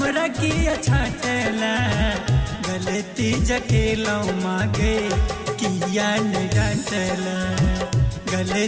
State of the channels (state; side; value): identical; both; correlation 1.00